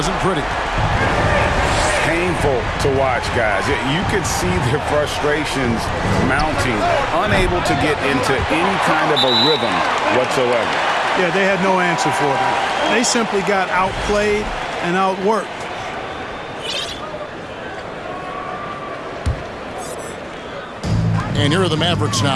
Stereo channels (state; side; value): identical; both; correlation 1.00